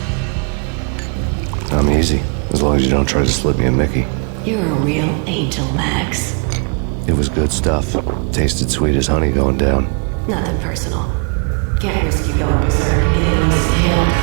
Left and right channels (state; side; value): quieter; left; 37.3 dB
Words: I'm easy, as long as you don't try to slip me a Mickey. You're a real angel, Max. It was good stuff. Tasted sweet as honey going down. Nothing personal. Can't risk you going berserk and getting Lisa killed.